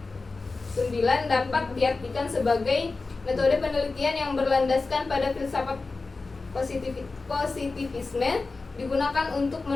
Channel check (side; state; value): right; quieter; 3.8 dB